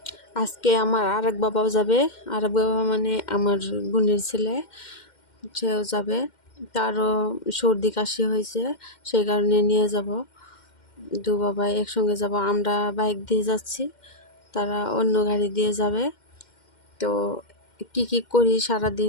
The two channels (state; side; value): late; right; 2.1 ms